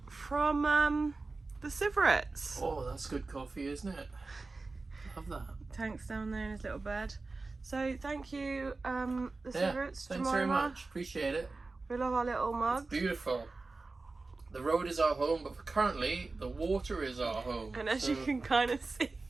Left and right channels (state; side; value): quieter; left; 3.6 dB